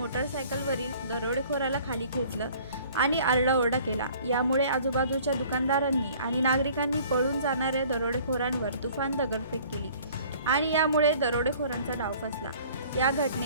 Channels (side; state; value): both; inverted; correlation -0.52